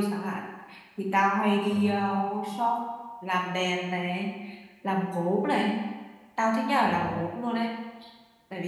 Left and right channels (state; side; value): identical; both; correlation 1.00